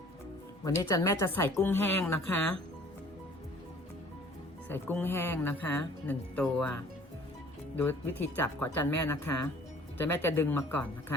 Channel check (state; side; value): normal; both; correlation 0.52